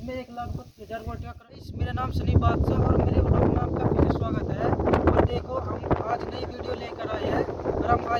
1,32,000 वोल्ट का करंट। मेरा नाम सनी बादशाह और मेरे ब्लॉग में आपका फिर से स्वागत है। और देखो हम आज नई वीडियो लेकर आए हैं और हम आए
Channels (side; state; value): both; identical; correlation 1.00